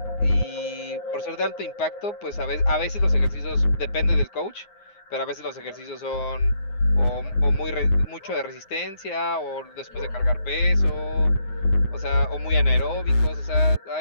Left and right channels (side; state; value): right; late; 9.6 ms